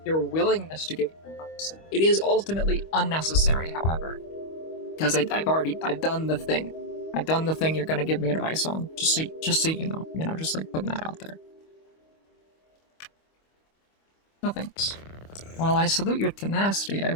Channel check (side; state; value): right; late; 25 ms